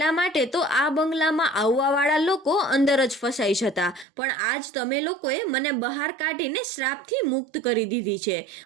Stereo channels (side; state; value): left; drops out; at 4.0 s